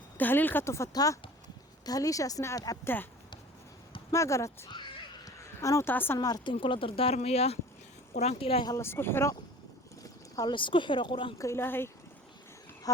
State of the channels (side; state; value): both; normal; correlation 0.43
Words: tahliil ka tufataa tahliishaasna aad cabtaa ma garat anuu taasan maaragtay in kula dardaarmayaa quraanka ilaahay ha la isku xiro quraanka ilaahay